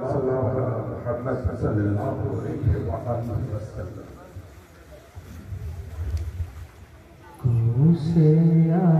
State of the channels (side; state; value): both; identical; correlation 1.00